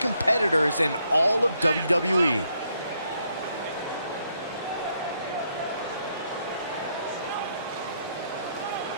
in all of WWE.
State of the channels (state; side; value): inverted; both; correlation -0.74